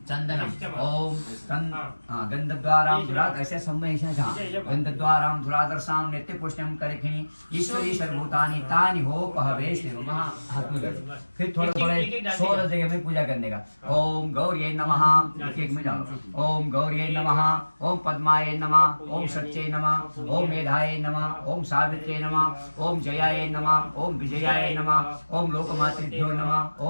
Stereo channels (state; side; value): inverted; both; correlation -1.00